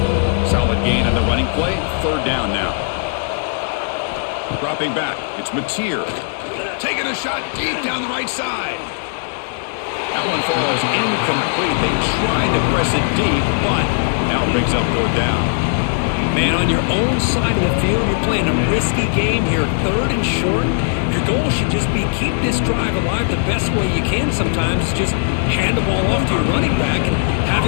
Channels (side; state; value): right; silent; digital silence